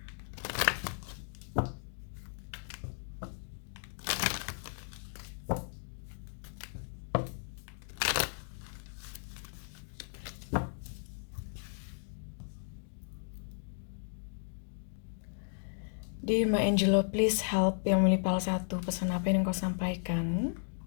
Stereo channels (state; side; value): silent; right; digital silence